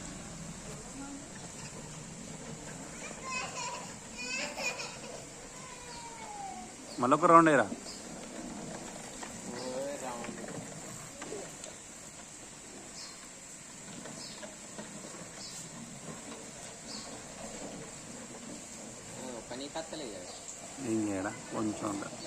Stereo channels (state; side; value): identical; both; correlation 1.00